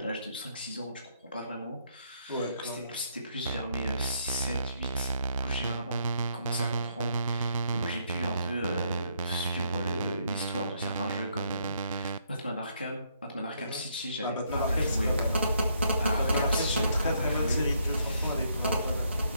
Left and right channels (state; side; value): inverted; both; correlation -0.72